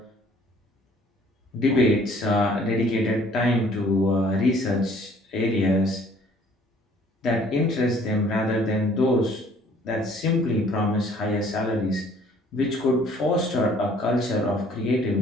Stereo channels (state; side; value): normal; both; correlation 0.57